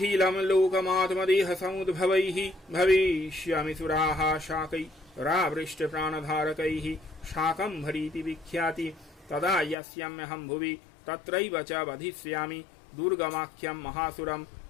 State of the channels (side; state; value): right; drops out; at 9.8 s